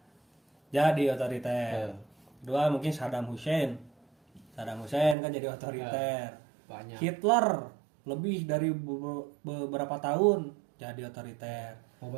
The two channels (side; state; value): left; drops out; at 5.2 s